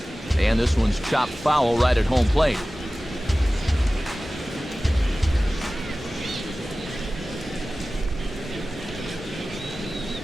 And this one's chopped foul right at home plate.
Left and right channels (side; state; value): both; normal; correlation 0.96